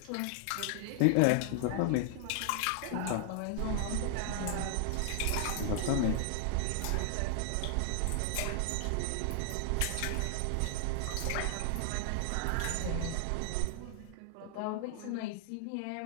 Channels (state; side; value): different; both; correlation 0.00